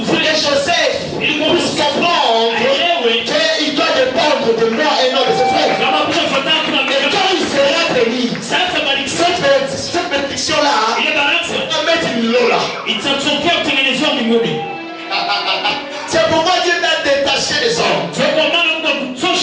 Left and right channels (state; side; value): identical; both; correlation 1.00